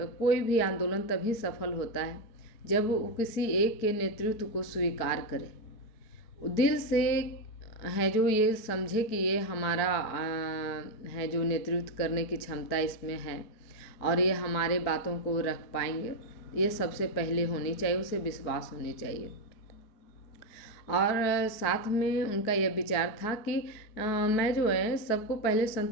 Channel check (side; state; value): right; late; 4.6 ms